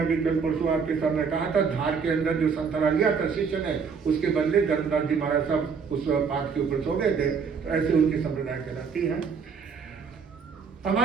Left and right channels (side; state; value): left; quieter; 5.8 dB